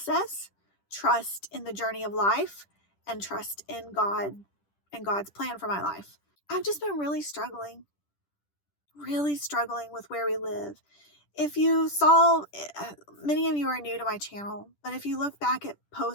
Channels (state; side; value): late; right; 10 ms